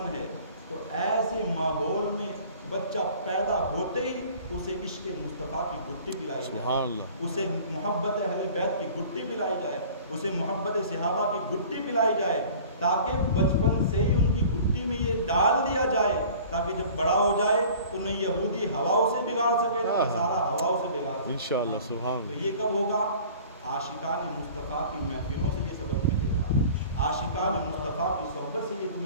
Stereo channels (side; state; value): both; inverted; correlation -0.46